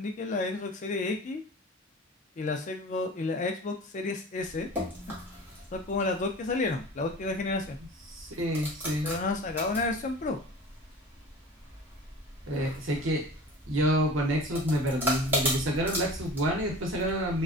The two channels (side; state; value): both; normal; correlation 0.39